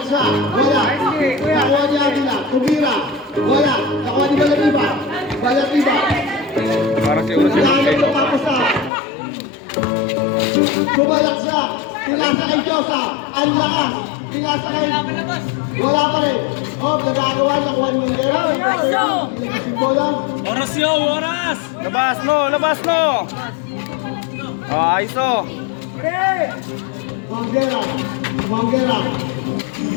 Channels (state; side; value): drops out; right; at 8.9 s